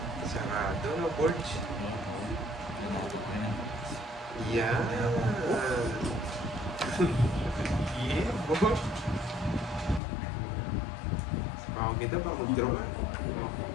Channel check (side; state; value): right; drops out; at 10.0 s